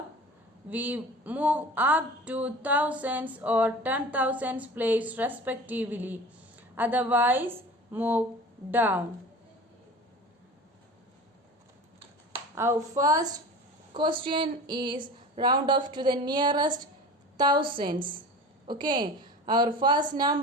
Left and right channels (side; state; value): both; normal; correlation 0.37